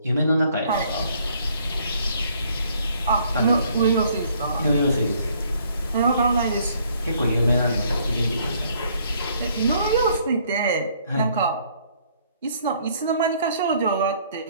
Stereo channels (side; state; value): both; inverted; correlation -0.64